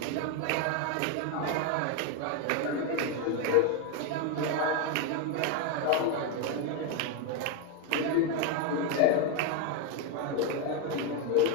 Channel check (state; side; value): different; both; correlation 0.02